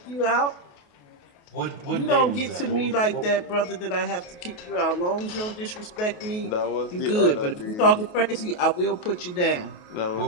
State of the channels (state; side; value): late; right; 28 ms